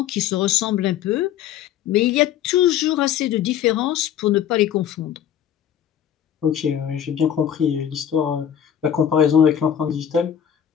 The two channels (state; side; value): quieter; right; 9.7 dB